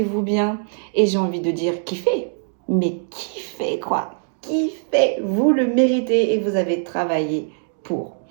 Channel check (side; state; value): left; silent; digital silence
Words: bien. Et j'ai envie de dire kiffez. Mais kiffez quoi. Kiffez. Vous le méritez et vous avez travaillé pour.